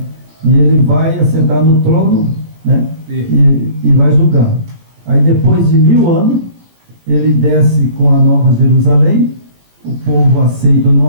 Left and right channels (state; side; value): late; left; 17 ms